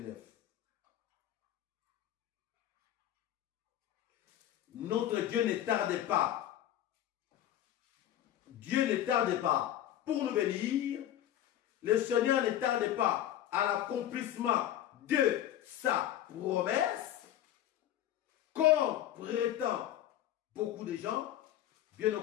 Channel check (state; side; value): quieter; right; 11.9 dB